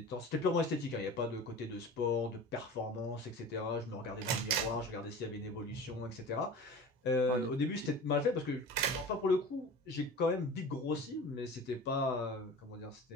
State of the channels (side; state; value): both; normal; correlation 0.36